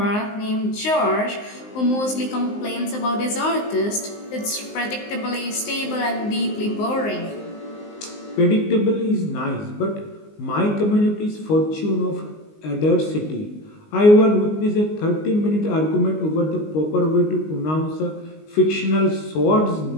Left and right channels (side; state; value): right; late; 19 ms